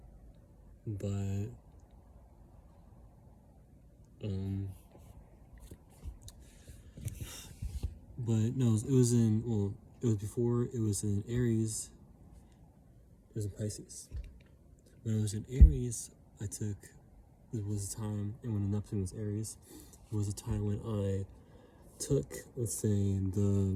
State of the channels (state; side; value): identical; both; correlation 1.00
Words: but no, it was before it was in Aries. It was in Pisces. When it was in Aries, it was a time, and when Neptune was Aries, it was a time when I took, let's say,